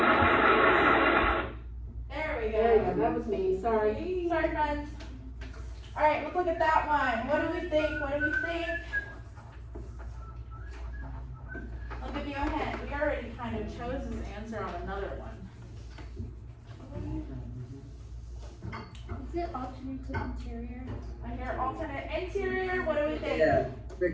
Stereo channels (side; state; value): both; identical; correlation 1.00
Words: There we There you go. go, that was me, sorry. Sorry, friends. Alright, let's look at that one. What do we think? What do we think? I'll give you a hint. We already kind of chose this answer on another one. Is it alternate to interior? I hear alternate interior. What do we think? Yeah,